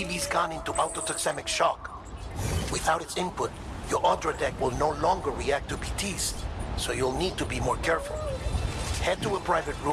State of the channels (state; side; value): identical; both; correlation 1.00